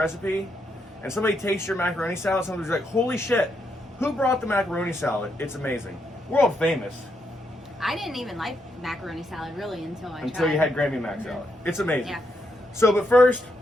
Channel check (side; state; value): both; normal; correlation 0.79